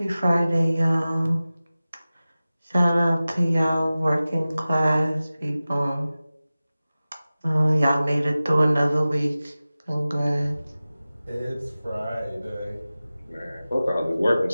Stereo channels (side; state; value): both; inverted; correlation -0.96